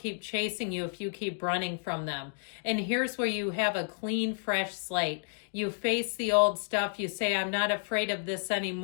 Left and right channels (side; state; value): right; silent; digital silence